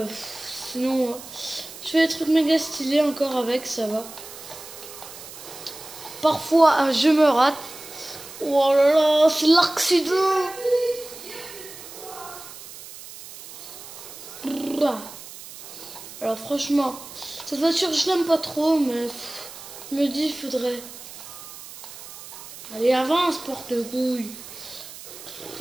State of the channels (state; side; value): noise; right; hiss, 15 dB below the sound